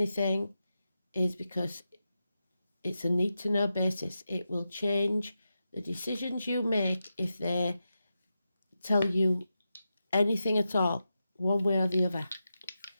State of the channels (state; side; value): inverted; both; correlation -0.89